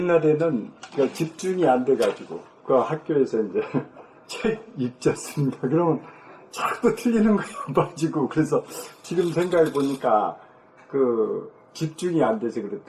그 집중이 안 돼가지고 그 학교에서 이제 책 읽자습니다. 그러면 자꾸 틀리는 거예요. 빠지고. 그래서 지금 생각해 보니까 그 집중이 안 돼서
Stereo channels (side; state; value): both; identical; correlation 1.00